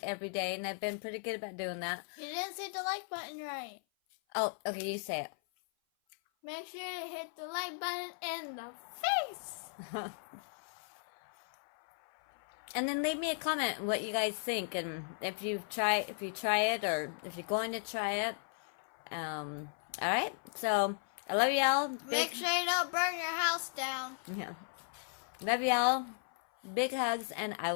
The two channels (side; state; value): right; silent; 54 dB below the other